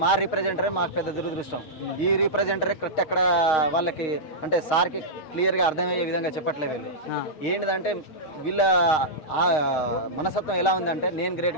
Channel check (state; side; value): late; right; 7.9 ms